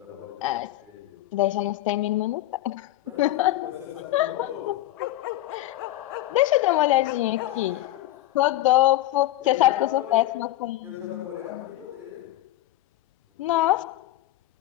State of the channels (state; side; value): quieter; right; 15.3 dB